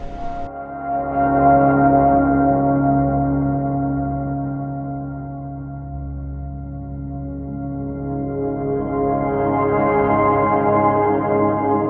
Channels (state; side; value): identical; both; correlation 1.00